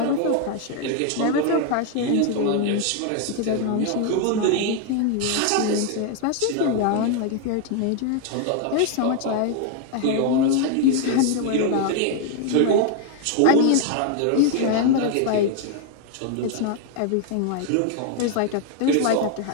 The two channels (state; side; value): different; both; correlation 0.01